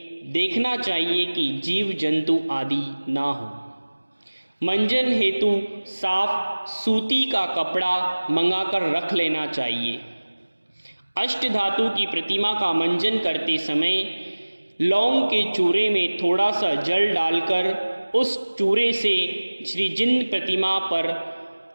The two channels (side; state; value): both; inverted; correlation -1.00